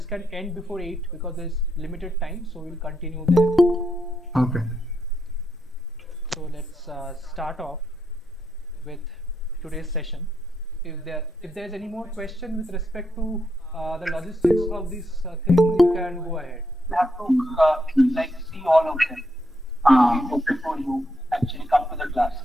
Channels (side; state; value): both; normal; correlation 0.80